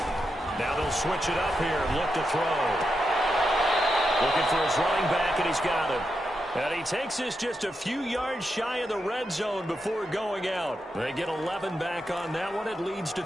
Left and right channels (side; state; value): both; normal; correlation 0.86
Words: Now they'll switch it up here and look to throw. Looking for his running back, and he's got him. And he takes this just a few yards shy of the red zone before going out. They get 11 back on that one. It leads to